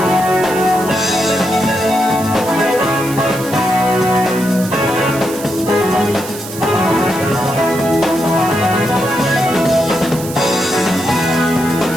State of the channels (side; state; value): right; noise; hiss, 12 dB below the sound